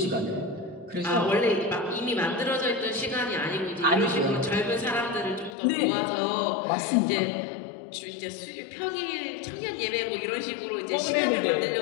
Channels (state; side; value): drops out; right; at 5.6 s